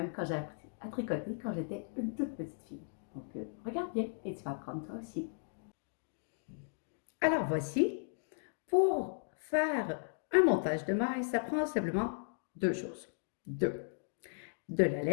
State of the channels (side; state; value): right; silent; digital silence